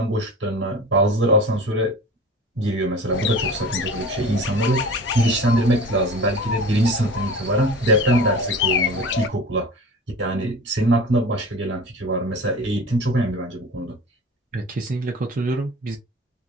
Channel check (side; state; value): both; normal; correlation 0.37